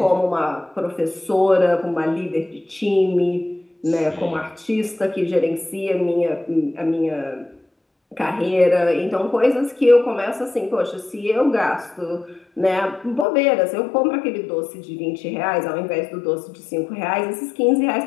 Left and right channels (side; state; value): right; drops out; at 13.2 s